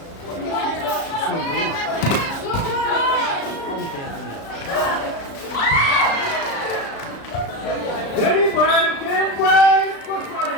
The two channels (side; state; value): right; late; 36 ms